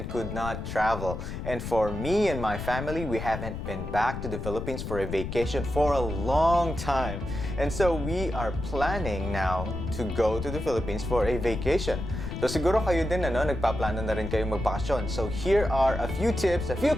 could not travel. And for me and my family, we haven't been back to the Philippines for a vacation for a long time. And so we are planning now to go to the Philippines for a vacation. So siguro kayo din nagpaplano na rin kayo magbakasyon. So here are a few tips, a few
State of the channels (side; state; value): left; noise; rumble, 6 dB below the sound